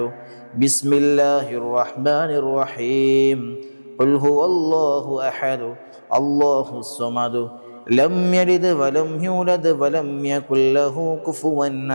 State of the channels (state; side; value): inverted; both; correlation -1.00